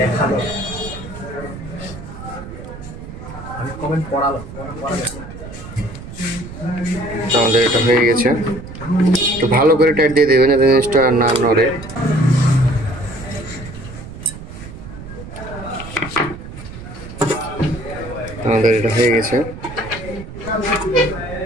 আমাদের এটা হয়ে গেছে। একটু ভালো করে টাইট দিয়ে দেবেন, জিনিসটা না নড়ে। আমাদের এটা হয়ে গেছে।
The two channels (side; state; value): right; noise; rumble, 13 dB below the sound